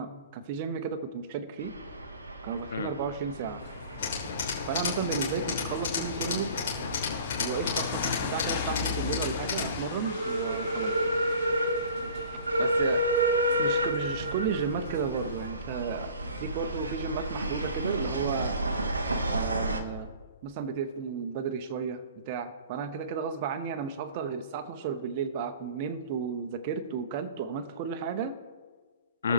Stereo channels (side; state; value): both; inverted; correlation -0.45